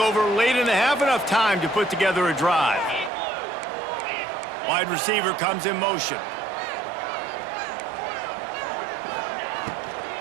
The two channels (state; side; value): drops out; left; at 3.1 s